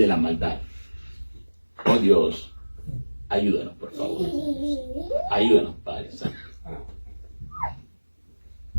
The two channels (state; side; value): inverted; both; correlation -1.00